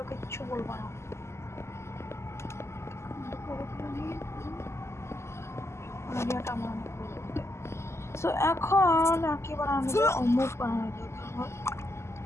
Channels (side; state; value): right; late; 0.13 ms